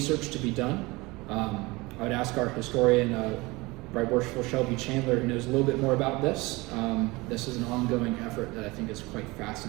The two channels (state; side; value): quieter; left; 23.0 dB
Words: to be done. I would ask our historian, Right Worshipful Shelby Chandler, who knows a little bit more about this. This is an ongoing effort that I think is quite